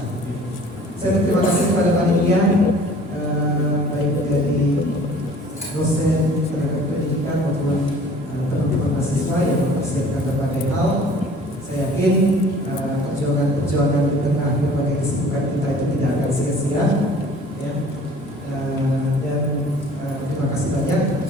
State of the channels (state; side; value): normal; both; correlation 0.49